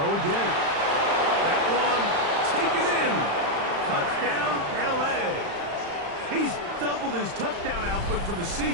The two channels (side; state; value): left; late; 35 ms